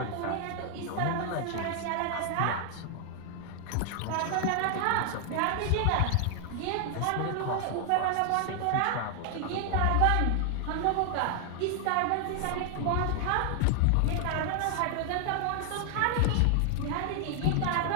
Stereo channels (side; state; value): both; different; correlation 0.00